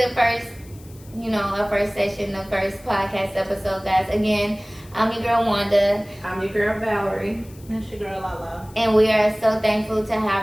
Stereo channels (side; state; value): left; noise; hiss, 24 dB below the sound